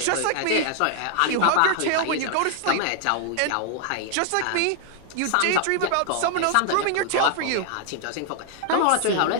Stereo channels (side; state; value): both; different; correlation 0.00